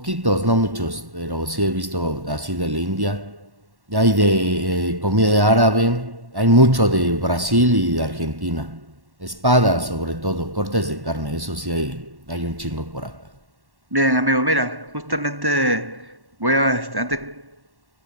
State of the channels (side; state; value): left; late; 1.1 ms